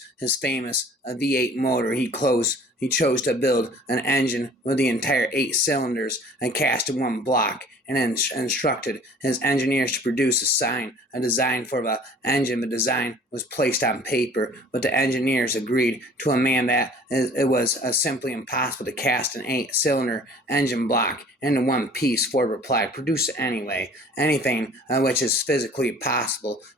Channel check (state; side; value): normal; both; correlation 0.49